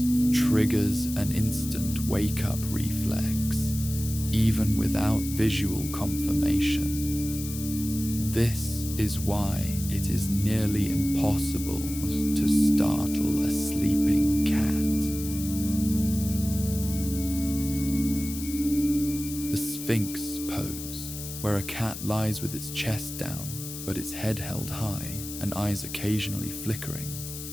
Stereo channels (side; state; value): left; noise; hiss, 10 dB below the sound